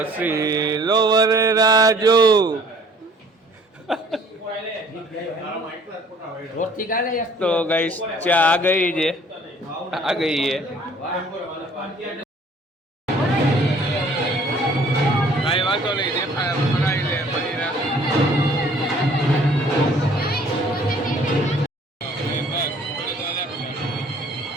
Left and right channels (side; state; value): both; normal; correlation 0.55